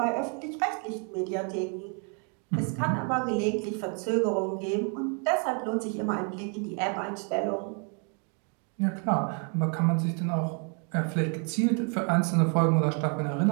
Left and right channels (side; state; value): left; quieter; 39.1 dB